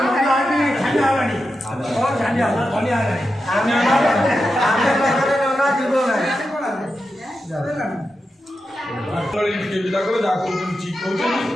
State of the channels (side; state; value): both; normal; correlation 0.89